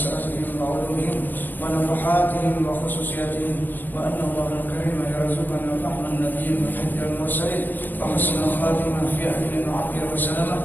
وعلومهم ونفحاتهم وخصوصياتهم وأن الله الكريم يرزقنا فهم النبي وحج المرسلين وحسن الخاتمة في أهل وعافية وسلامة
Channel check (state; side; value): late; right; 0.091 ms